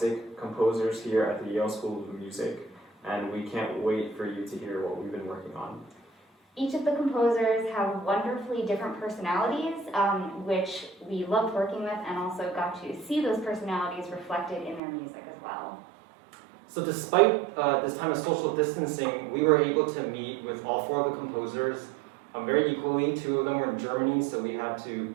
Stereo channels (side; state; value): left; drops out; at 14.8 s